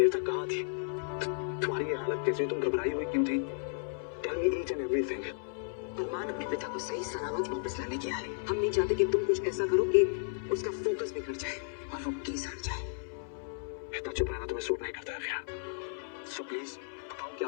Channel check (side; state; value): right; silent; 55 dB below the other